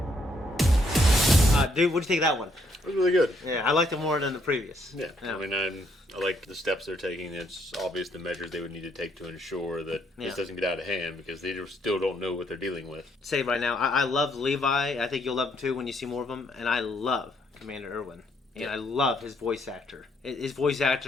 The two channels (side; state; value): both; normal; correlation 0.71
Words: Dude, what do you think of that one? It was really good. Yeah, I liked it more than the previous. Yeah. I mean, I like the steps they're taking. It's obvious the measures they would need to take to ensure that this doesn't get out of hand because they still don't know what they're dealing with. Say right now, I love Levi. I think you'll love him too when you see more of him. And I love Commander Erwin. And I love his voice actor. His voice